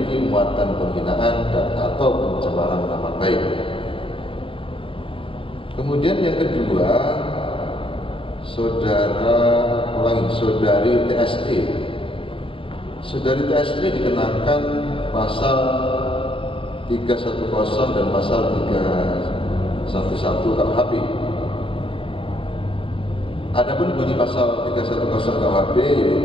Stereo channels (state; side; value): late; right; 0.26 ms